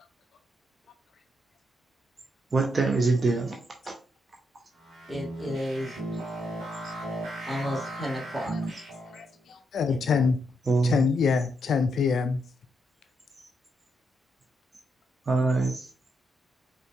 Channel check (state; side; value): normal; both; correlation 0.80